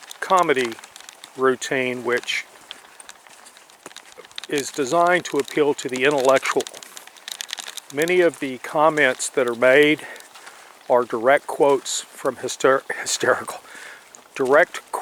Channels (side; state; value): both; identical; correlation 1.00